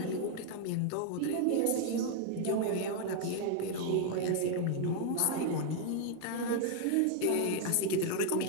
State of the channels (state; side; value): different; both; correlation 0.00